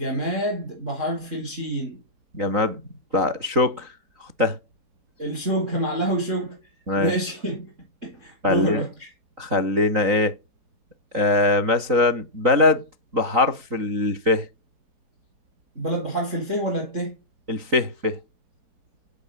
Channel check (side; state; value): left; late; 3.9 ms